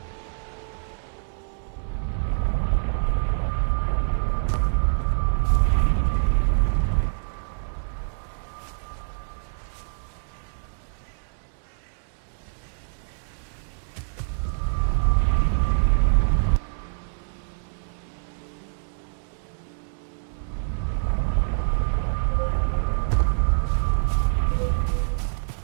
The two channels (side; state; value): left; silent; digital silence